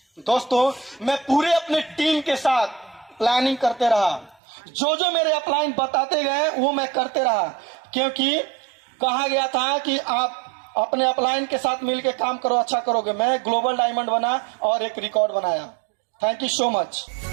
दोस्तों, मैं पूरे अपने टीम के साथ प्लानिंग करते रहा। जो मेरे अपलाइन बताते गए वो मैं करते रहा, क्योंकि कहा गया था कि आप अपने अपलाइन के साथ मिलकर काम करो, अच्छा करोगे। मैं ग्लोबल डायमंड बना और एक रिकॉर्ड बनाया। Thank you so much.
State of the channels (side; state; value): left; drops out; at 4.4 s